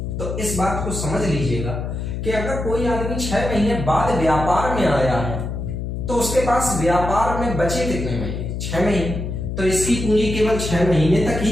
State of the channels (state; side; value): noise; left; hum, 4 dB below the sound